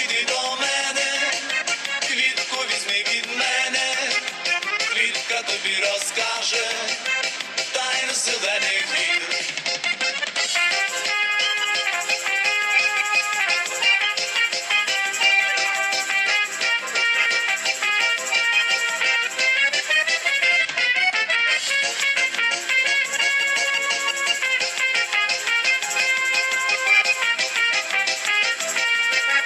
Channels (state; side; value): identical; both; correlation 1.00